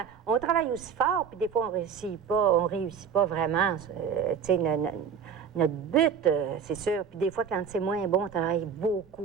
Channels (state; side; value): quieter; left; 7.0 dB